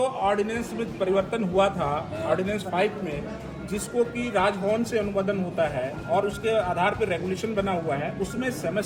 ऑर्डिनेंस में परिवर्तन हुआ था, ऑर्डिनेंस 5 में, जिसको कि राजभवन से अनुमोदन होता है और उसके आधार पर रेगुलेशन बना हुआ है, उसमें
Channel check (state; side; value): identical; both; correlation 1.00